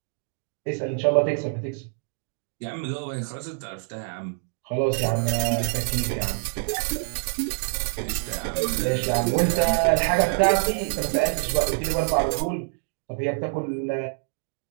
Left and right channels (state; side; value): silent; left; digital silence